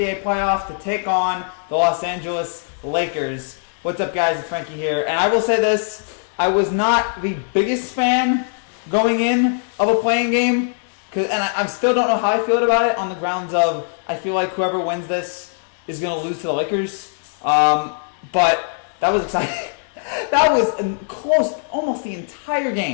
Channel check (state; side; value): silent; right; digital silence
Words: playoffs to take on the Los Angeles Lakers. What's up, guys? It's Frankie here, and I will say this. I was not the biggest fan going in of a playing game, and I still don't know how I feel about it on the grounds of I feel like whoever wins this is going to lose to the Lakers. But that was exciting. That was close almost the entire